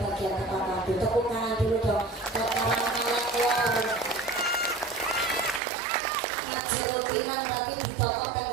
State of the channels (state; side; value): drops out; left; at 5.6 s